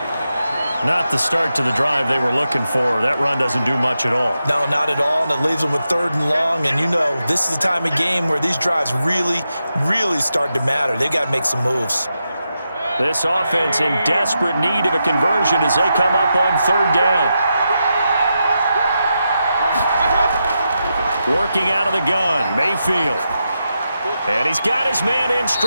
Not the start to the drive they were looking for. That run doesn't do much at all. No, not at all, and it leaves them with 3rd and long. And you know, this is the time of game where these drives really start to matter. They've got to make some moves. This offense in desperate need of a conversion as they come up on 3rd down. Working out of the gun, Mayfield. And he's got his man in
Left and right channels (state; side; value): inverted; both; correlation -0.87